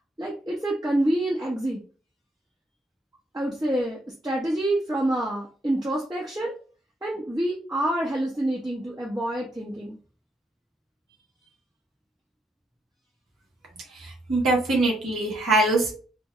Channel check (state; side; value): normal; both; correlation 0.76